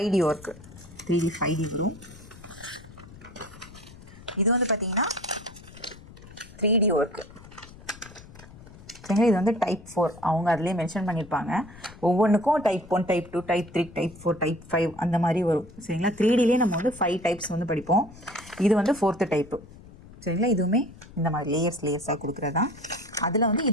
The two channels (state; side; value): noise; left; rumble, 19 dB below the sound